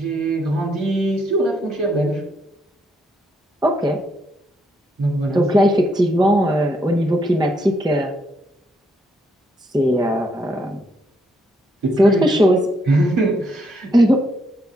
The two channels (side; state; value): both; normal; correlation 0.75